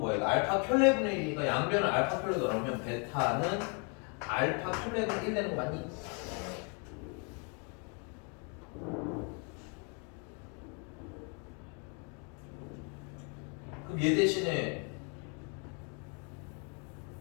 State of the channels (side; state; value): right; quieter; 36.6 dB